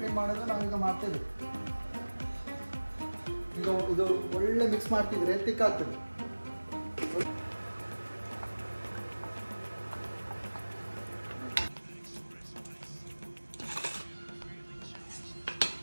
ಮಾಡೋದು ನಾವೀಗ ಮಾಡ್ತೇವೆ. ಈಗ ಇದು ಒಳ್ಳೆ ಮಿಕ್ಸ್ ಮಾಡ್ತಿದ್ರೆ ತಿಕ್ಕಾಗ್ತದೆ.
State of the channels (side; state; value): both; inverted; correlation -1.00